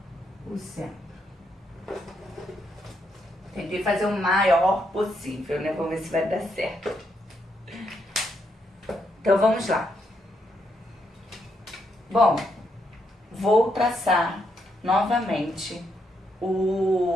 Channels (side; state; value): both; normal; correlation 0.78